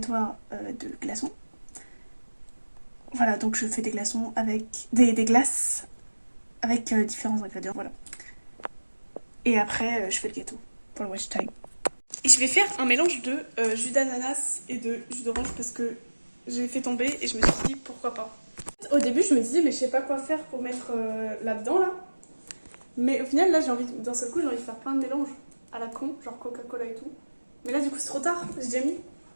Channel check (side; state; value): both; inverted; correlation -1.00